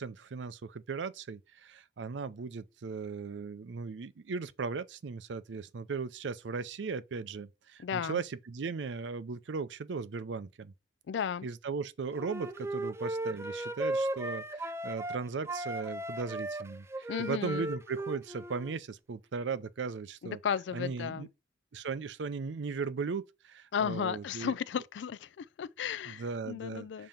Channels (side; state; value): both; normal; correlation 0.17